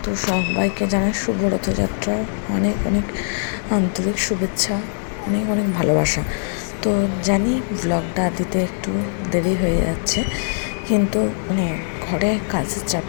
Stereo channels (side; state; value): right; silent; digital silence